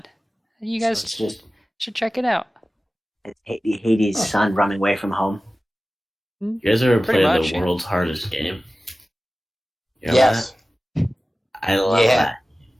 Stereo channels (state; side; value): normal; both; correlation 0.96